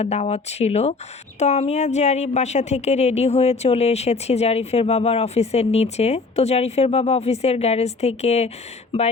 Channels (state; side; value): quieter; right; 4.0 dB